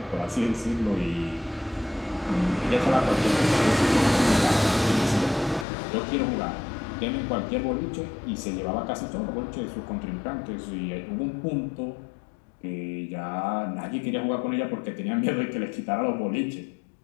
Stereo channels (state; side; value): drops out; right; at 5.7 s